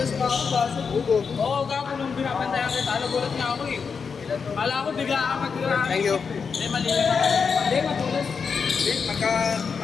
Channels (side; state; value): right; quieter; 5.7 dB